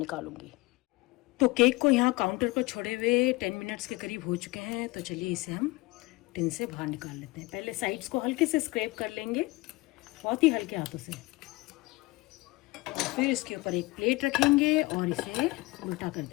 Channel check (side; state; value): right; quieter; 22.6 dB